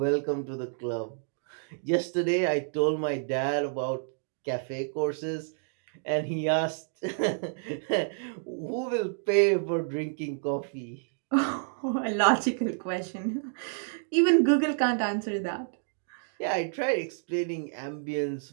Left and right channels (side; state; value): left; silent; digital silence